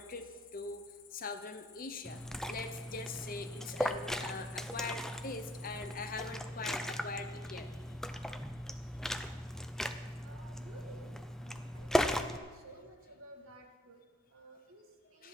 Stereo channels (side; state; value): both; normal; correlation 0.68